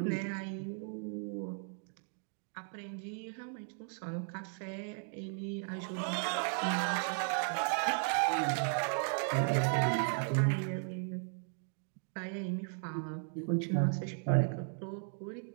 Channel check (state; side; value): silent; left; 54 dB below the other